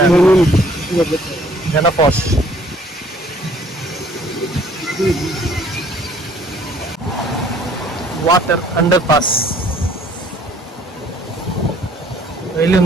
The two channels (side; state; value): both; normal; correlation 0.58